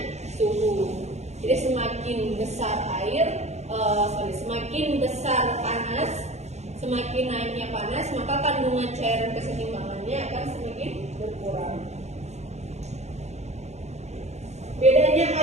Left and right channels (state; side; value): late; left; 0.32 ms